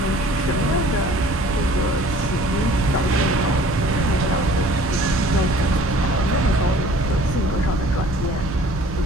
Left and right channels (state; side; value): normal; both; correlation 0.51